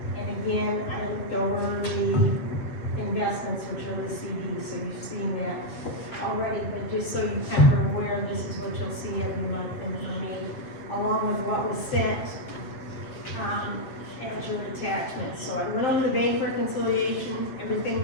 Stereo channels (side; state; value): right; late; 7.7 ms